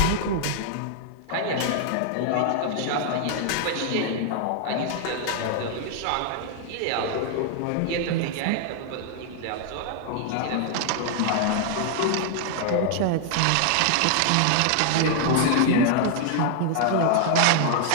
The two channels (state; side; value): different; both; correlation 0.00